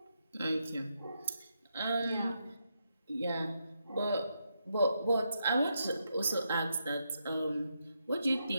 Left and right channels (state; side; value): inverted; both; correlation -0.82